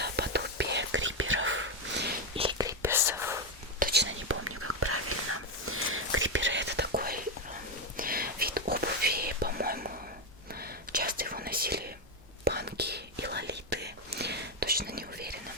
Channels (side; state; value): both; normal; correlation 0.07